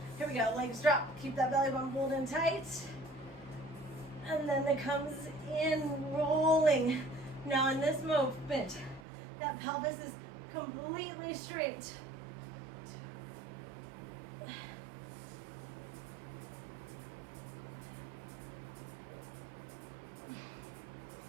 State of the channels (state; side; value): drops out; left; at 9.0 s